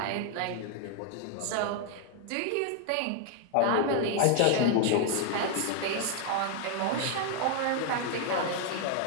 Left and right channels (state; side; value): different; both; correlation 0.00